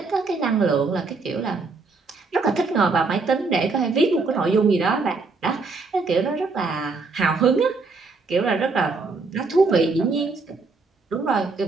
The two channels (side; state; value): left; quieter; 4.0 dB